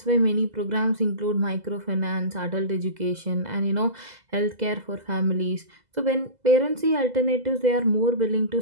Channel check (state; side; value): late; left; 2.0 ms